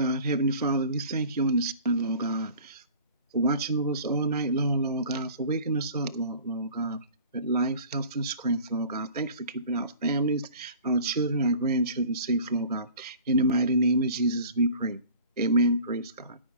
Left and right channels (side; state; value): both; inverted; correlation -0.45